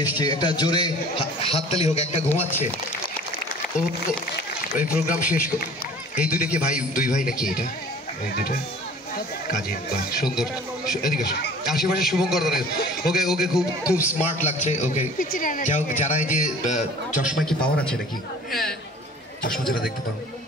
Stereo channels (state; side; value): normal; both; correlation 0.47